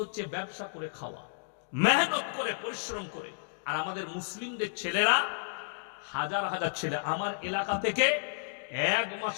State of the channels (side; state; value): right; silent; digital silence